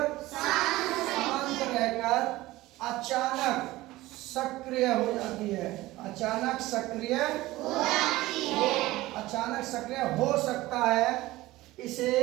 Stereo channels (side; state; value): left; quieter; 18.1 dB